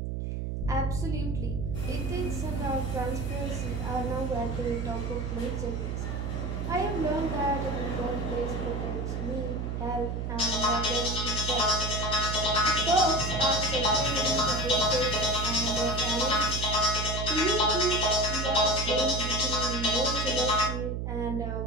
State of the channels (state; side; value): noise; right; hum, 3 dB below the sound